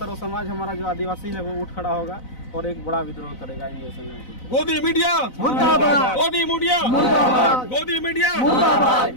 समाज हमारा जो आदिवासी है वो उठ खड़ा होगा और एक बड़ा विद्रोह करेगा इन देशों में। गोदी मीडिया मुर्दाबाद, गोदी मीडिया मुर्दाबाद, गोदी मीडिया मुर्दाबाद,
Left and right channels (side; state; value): right; late; 4.0 ms